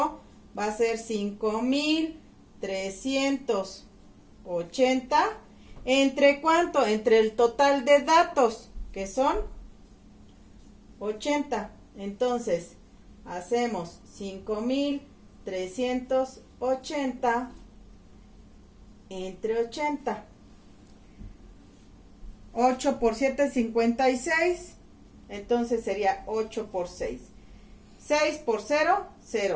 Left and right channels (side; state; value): both; identical; correlation 1.00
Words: va a ser 5,380. ¿Entre cuánto? Entre el total de datos, que son 80. Entonces, hacemos 5,380 entre 80. 8 por 7, 56. Entonces sería 8 por 6. 6 por 0,